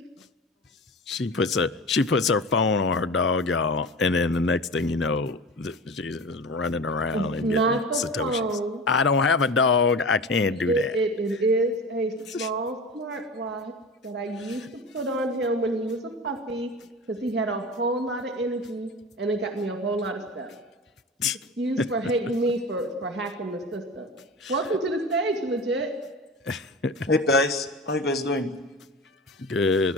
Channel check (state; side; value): normal; both; correlation 0.32